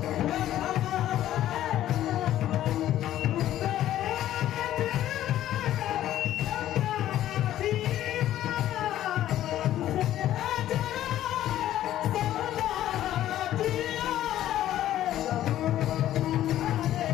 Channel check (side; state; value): right; quieter; 12.8 dB